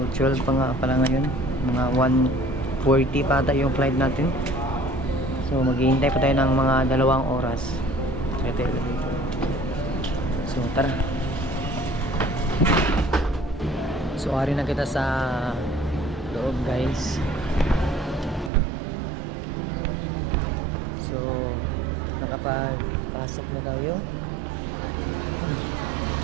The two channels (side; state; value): left; drops out; at 18.5 s